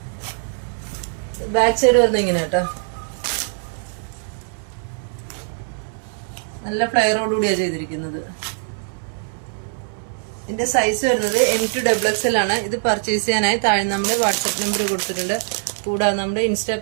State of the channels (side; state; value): left; silent; 64 dB below the other